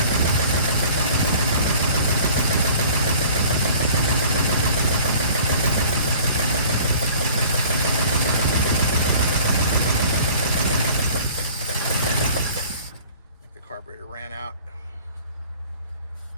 think the carburetor ran out.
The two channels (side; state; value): both; inverted; correlation -0.48